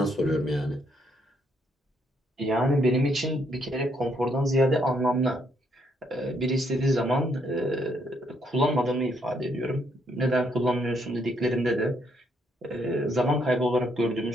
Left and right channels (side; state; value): both; normal; correlation 0.72